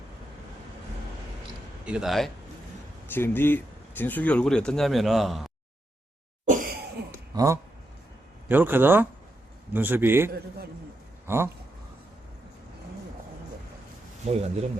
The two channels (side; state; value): both; normal; correlation 0.84